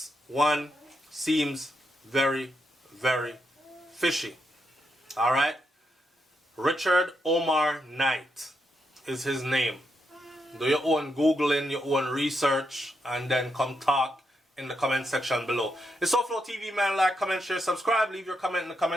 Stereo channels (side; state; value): both; normal; correlation 0.82